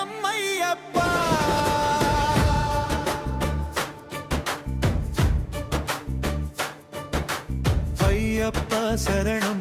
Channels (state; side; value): identical; both; correlation 1.00